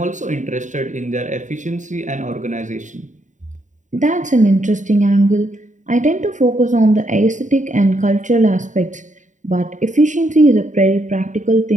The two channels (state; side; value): late; left; 0.36 ms